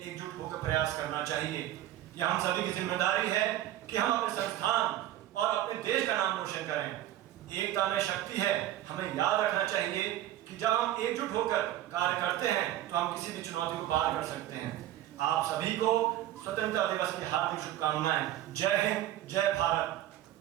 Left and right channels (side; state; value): left; quieter; 13.3 dB